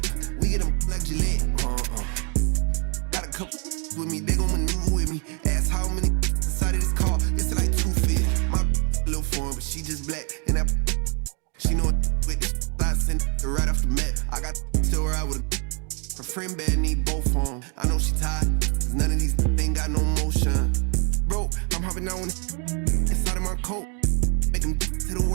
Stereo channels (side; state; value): left; quieter; 36.3 dB